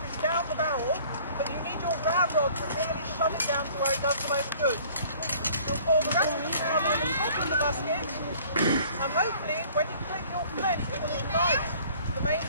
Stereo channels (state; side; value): inverted; both; correlation -0.53